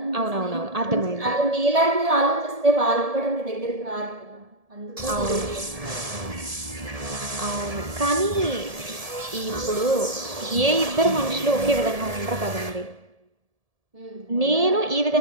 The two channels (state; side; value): late; left; 1.7 ms